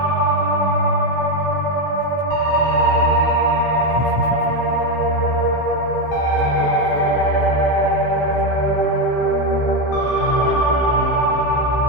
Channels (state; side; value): late; right; 16 ms